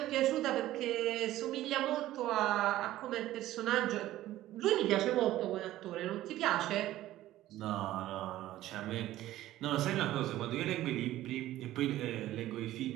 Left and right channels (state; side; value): quieter; left; 14.7 dB